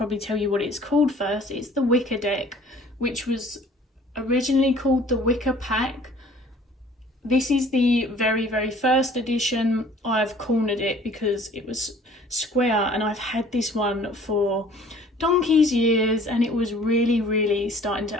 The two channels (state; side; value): normal; both; correlation 0.52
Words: tell you what it's called first. It's the Wicca deck, which was originally called the Wicca Pack. This is the very, very first edition. I've cornered it because it was square, and I've had this one for donkey's years, and it was really, really starting